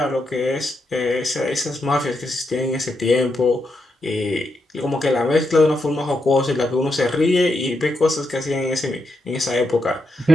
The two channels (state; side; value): normal; both; correlation 0.83